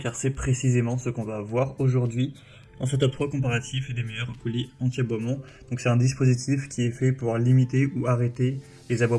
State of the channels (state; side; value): identical; both; correlation 1.00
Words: c'est précisément ce qu'on va voir aujourd'hui dans ce top 3 comparatif des meilleurs colliers anti-aboiement. Donc c'est un dispositif qui est fait pour limiter ou arrêter les